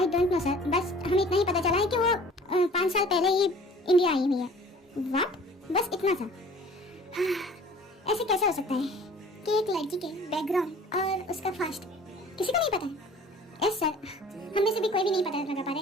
डोंट नो सर, बस हमें इतना ही पता चला है कि वो 5 साल पहले ही इंडिया आई हुई है। व्हाट? बस इतना सा। ऐसे कैसे हो सकता है कि एक लड़की के बैकग्राउंड और उसका फास्ट किसी को नहीं पता है? यस सर, हम में से भी कोई भी नहीं पता लगा पा रहा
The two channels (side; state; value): both; normal; correlation 0.48